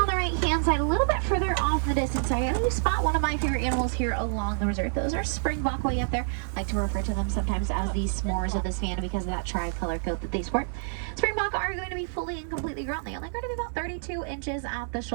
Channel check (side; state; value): left; silent; digital silence